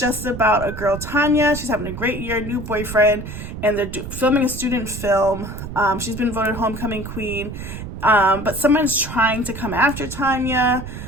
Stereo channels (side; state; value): right; noise; rumble, 9 dB below the sound